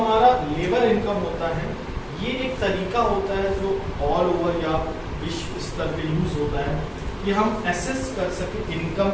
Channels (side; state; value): both; identical; correlation 1.00